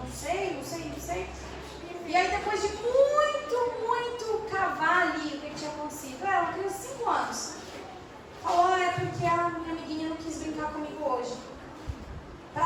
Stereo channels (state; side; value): identical; both; correlation 1.00